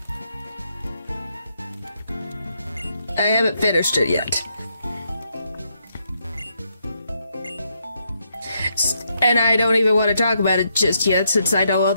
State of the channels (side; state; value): both; inverted; correlation -0.77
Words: I haven't finished it yet. And I don't even want to talk about it just yet, since I know